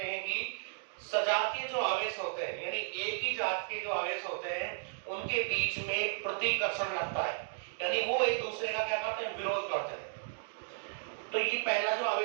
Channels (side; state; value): left; silent; digital silence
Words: हैं कि सजातीय जो आवेश होते हैं, यानी एक ही जात के जो आवेश होते हैं, उनके बीच में प्रतिकर्षण लगता है, यानी वो एक दूसरे का क्या करते हैं? विरोध करते हैं। तो ये पहला जो